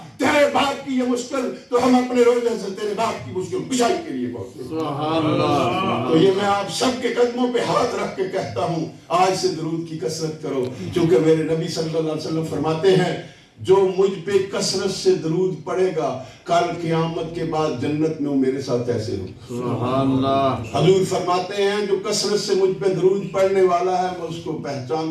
تیرے باپ کی یہ مشکل تو ہم اپنے روزے سے تیرے باپ کی مشکل کشائی کے لیے پہنچے۔ سبحان اللہ۔ تو یہ میں آپ سب کے قدموں پہ ہاتھ رکھ کے کہتا ہوں آج سے درود کی کثرت کرو، کیونکہ میرے نبی صلی اللہ علیہ وسلم فرماتے ہیں جو مجھ پہ کثرت سے درود پڑے گا کل قیامت کے بعد جنت میں وہ میرے ساتھ ایسے ہو۔ سبحان اللہ۔ حضور فرماتے ہیں جو کثرت سے مجھ پہ درود پڑھنے والا ہے میں اس کو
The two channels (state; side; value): identical; both; correlation 1.00